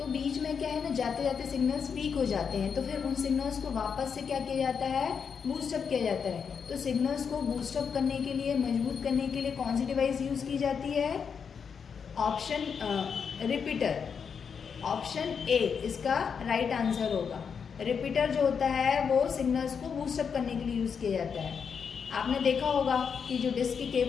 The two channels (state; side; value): quieter; right; 6.5 dB